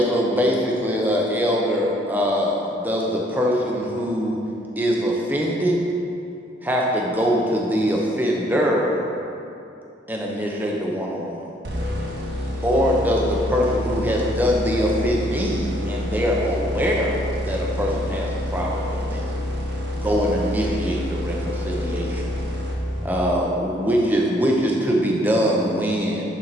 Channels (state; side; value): normal; both; correlation 0.65